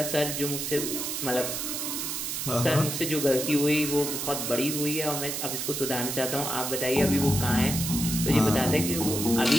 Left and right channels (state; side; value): noise; right; hiss, 3 dB below the sound